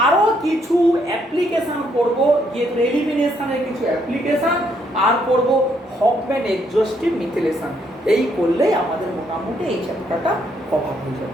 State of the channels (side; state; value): both; normal; correlation 0.72